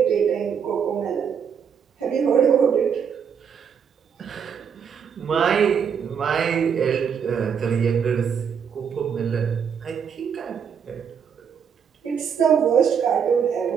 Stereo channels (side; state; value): left; quieter; 7.3 dB